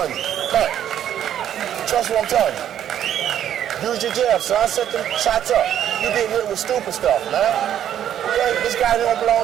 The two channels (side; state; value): left; quieter; 10.4 dB